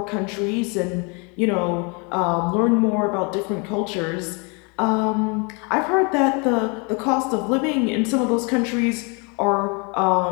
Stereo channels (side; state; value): right; quieter; 32.5 dB